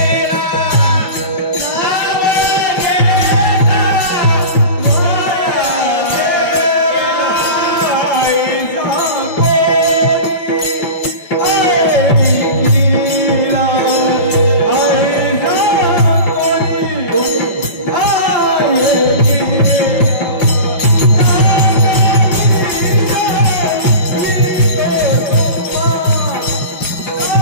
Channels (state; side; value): late; right; 5.3 ms